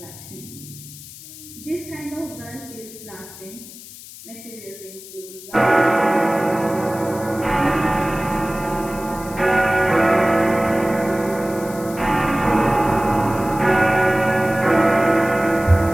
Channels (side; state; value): left; noise; hiss, 16 dB below the sound